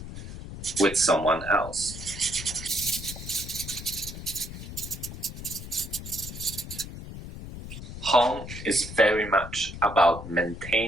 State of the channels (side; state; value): left; noise; rumble, 11 dB below the sound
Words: with someone else. Home is very much about